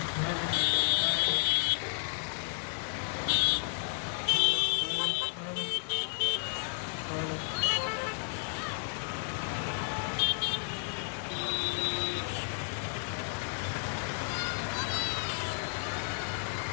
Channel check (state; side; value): silent; right; 56 dB below the other